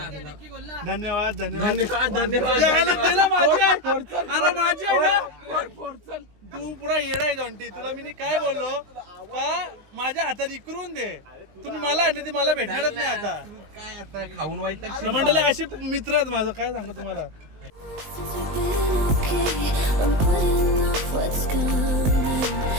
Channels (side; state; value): left; late; 19 ms